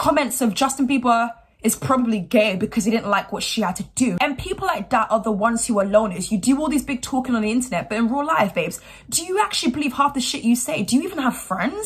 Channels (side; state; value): both; identical; correlation 1.00